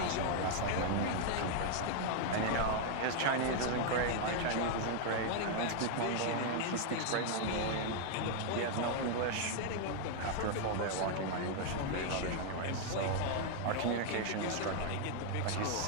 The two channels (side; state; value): both; different; correlation 0.00